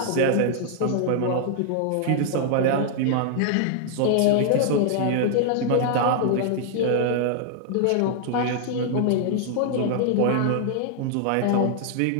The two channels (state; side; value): different; both; correlation 0.00